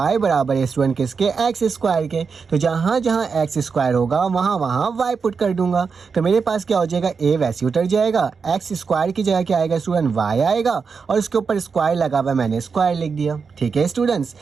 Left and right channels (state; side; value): quieter; left; 5.4 dB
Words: बराबर है स्टूडेंट किसके, x स्क्वायर के। तो जहाँ जहाँ x स्क्वायर होगा वहाँ वहाँ y पुट कर दूंगा। तो मेरे पास क्या हो जाएगा, a वैसे उतर जाएगा, x स्क्वायर की जगह क्या आएगा स्टूडेंट, y आएगा और उसके ऊपर स्क्वायर लगा हुआ है, मैंने स्क्वायर लिख दिया। ठीक है स्टूडेंट्स,